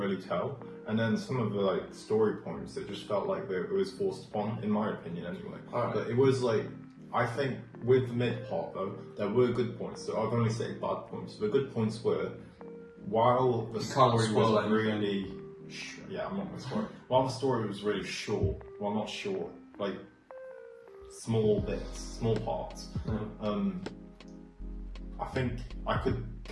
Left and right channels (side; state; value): both; identical; correlation 1.00